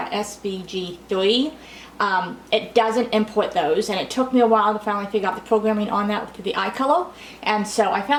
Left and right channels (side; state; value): both; identical; correlation 1.00